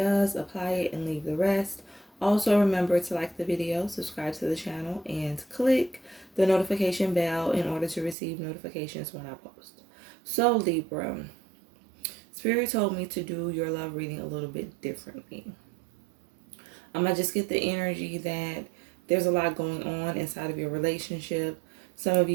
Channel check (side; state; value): left; drops out; at 8.2 s